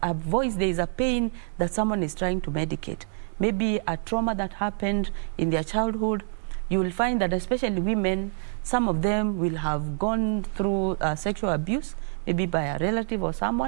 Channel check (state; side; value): silent; left; 60 dB below the other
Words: voice, there is a pain that someone is trying to medicate. Maybe a trauma that happened in their childhood. You will find that especially women, some of them will have gone through sexual abuse, maybe by a relative or